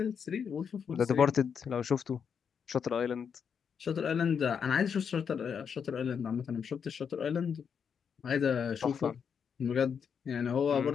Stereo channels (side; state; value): right; quieter; 7.0 dB